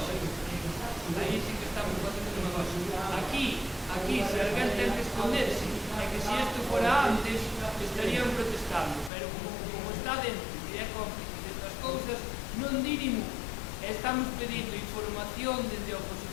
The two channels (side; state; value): right; drops out; at 9.1 s